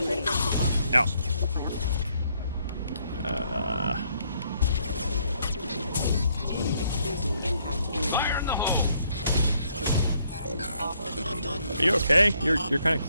No. Are you okay? You're kind of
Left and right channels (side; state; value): both; inverted; correlation -0.70